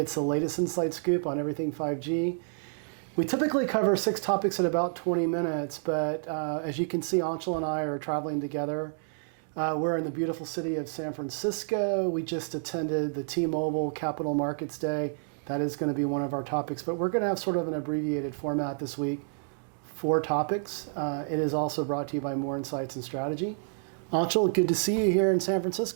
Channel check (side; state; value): left; silent; digital silence